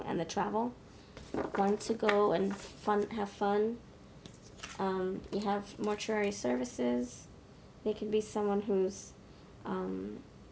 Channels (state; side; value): identical; both; correlation 1.00